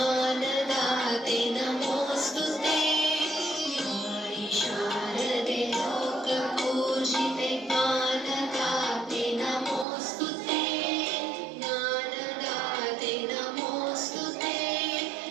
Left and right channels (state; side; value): drops out; left; at 9.9 s